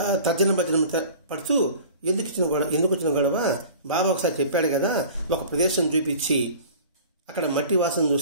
తర్జన పడుతూ ఎందుకు వచ్చిన గొడవ? బాబా ఒకసారి చెప్పాడు కదా, ఒక ప్రదేశం చూపించి అక్కడ మట్టి వాసన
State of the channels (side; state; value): both; inverted; correlation -0.43